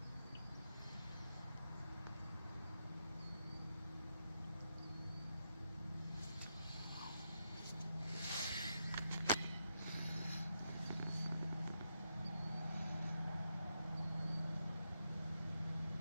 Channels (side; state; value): both; inverted; correlation -0.82